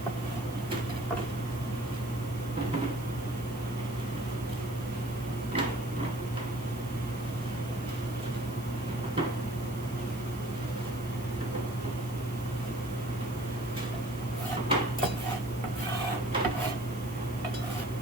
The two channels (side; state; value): right; noise; hiss, 17 dB below the sound